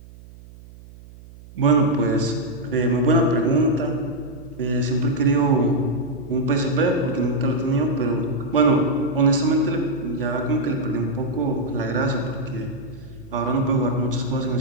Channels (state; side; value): noise; right; hum, 20 dB below the sound